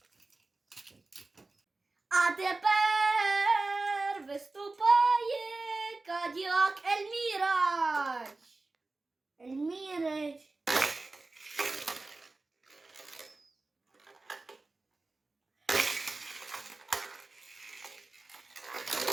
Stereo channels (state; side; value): quieter; left; 3.4 dB